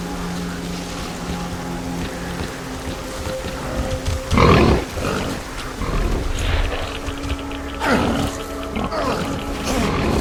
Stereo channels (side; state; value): both; identical; correlation 1.00